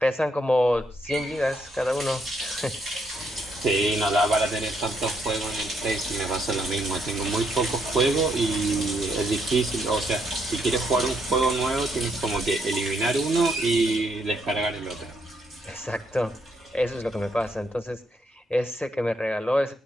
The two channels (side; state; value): both; normal; correlation 0.74